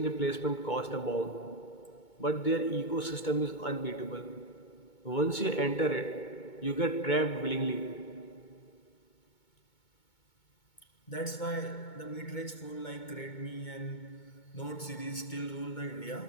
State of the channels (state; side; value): late; right; 2.2 ms